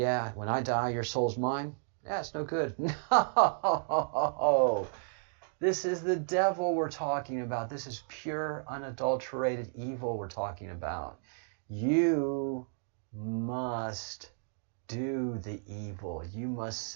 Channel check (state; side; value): silent; left; digital silence